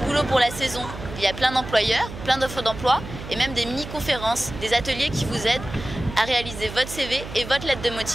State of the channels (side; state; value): right; noise; hum, 11 dB below the sound